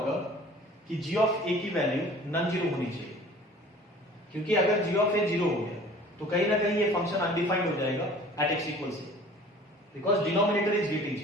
कि g ऑफ a की वैल्यू नॉन जीरो होनी चाहिए, क्योंकि अगर g ऑफ a 0 हो गया तो कहीं ना कहीं ये फंक्शन अनडिफाइंड हो जाएगा at x = a, because denominator is getting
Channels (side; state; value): both; normal; correlation 0.48